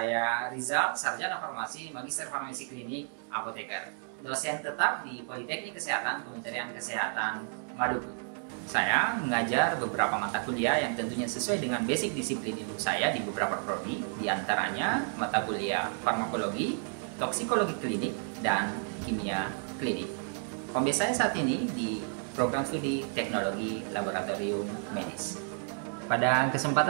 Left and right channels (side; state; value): left; silent; 57 dB below the other